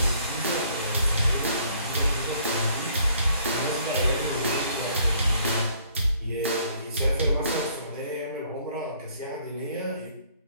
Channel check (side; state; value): both; inverted; correlation -0.62